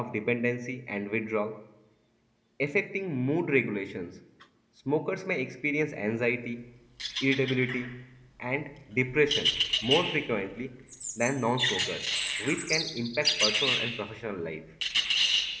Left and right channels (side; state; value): both; identical; correlation 1.00